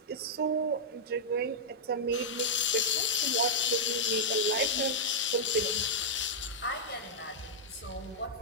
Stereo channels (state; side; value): normal; both; correlation -0.06